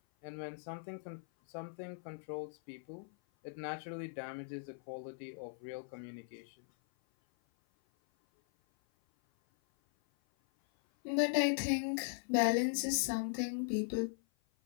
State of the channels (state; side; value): silent; right; 52 dB below the other